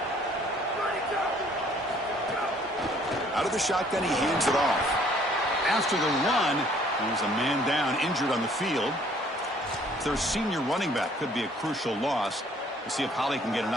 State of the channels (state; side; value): normal; both; correlation 0.60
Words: Out of the shotgun, he hands it off. After the run, there's a man down, injured on the field. Their senior running back could be a crucial loss. We'll see if Holly can get an